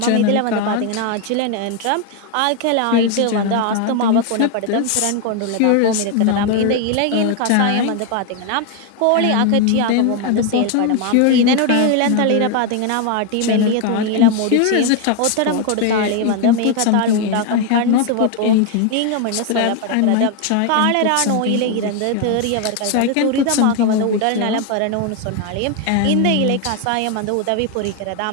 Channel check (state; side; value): different; both; correlation 0.01